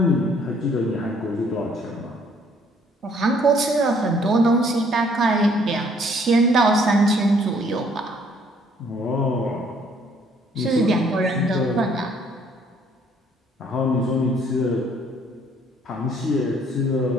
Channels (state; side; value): normal; both; correlation 0.63